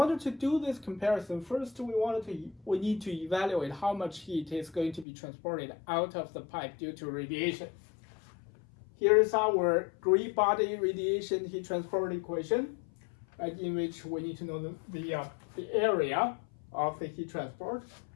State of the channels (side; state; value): right; drops out; at 5.1 s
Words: to do this comparison, first we need to evaluate how much heat is going to be transported out of the pipe due to radiation. Here is our gray body radiation heat transport equation, right, in which we need to know the area of the heat transport,